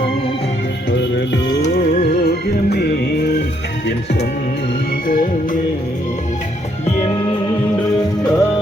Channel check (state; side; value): normal; both; correlation 0.71